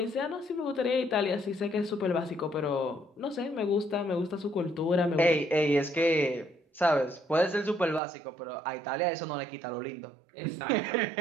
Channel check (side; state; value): left; drops out; at 8.0 s